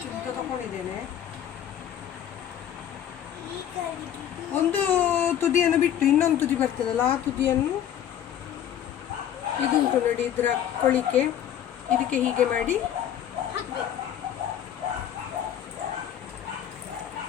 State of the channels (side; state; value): right; quieter; 10.2 dB